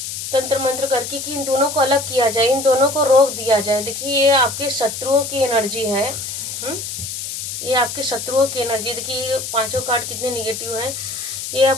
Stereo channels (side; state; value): left; noise; hiss, 6 dB below the sound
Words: तंत्र मंत्र करके कि इन दोनों को अलग किया जाए, इन दोनों को रोक दिया जाए। देखिए ये आपके शत्रुओं की एनर्जी है। ये आपके शत्रुओं की एनर्जी। देखिए ये पांचों कार्ड कितने निगेटिव हैं। ये